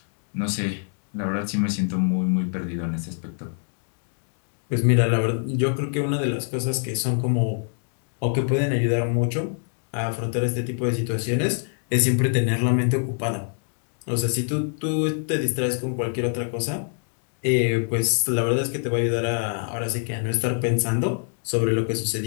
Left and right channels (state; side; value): silent; right; digital silence